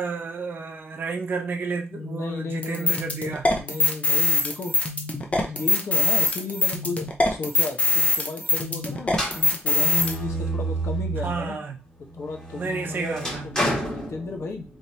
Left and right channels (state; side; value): normal; both; correlation 0.73